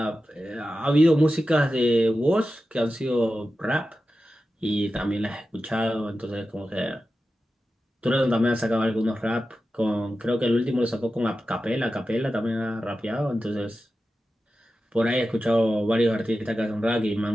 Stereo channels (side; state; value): both; normal; correlation 0.92